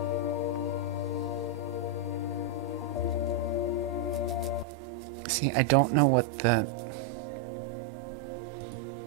See, I don't know what the...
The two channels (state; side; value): drops out; left; at 4.7 s